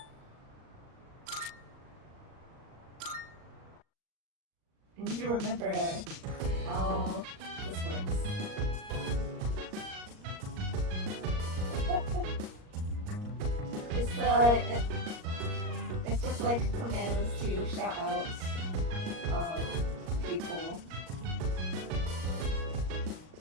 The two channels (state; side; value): late; left; 38 ms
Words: need to remember how this works. It's it's just like commands to shout out people,